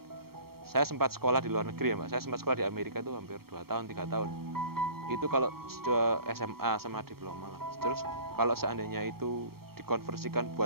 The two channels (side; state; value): left; late; 0.94 ms